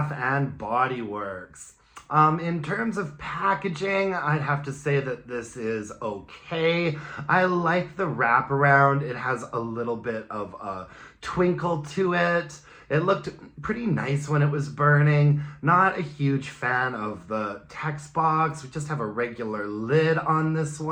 and Body Works. In terms of packaging, I'd have to say that this is okay. I like the wraparound. It has a little bit of a twinkle to it. It looked pretty nice when it was burning. Not a huge fan of the text box. We just have a regular lid on this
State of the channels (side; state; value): both; identical; correlation 1.00